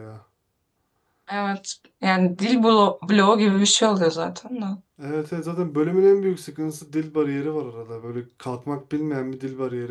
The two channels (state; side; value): identical; both; correlation 1.00